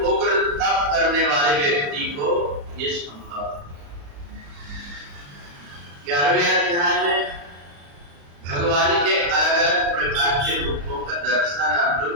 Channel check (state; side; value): late; left; 35 ms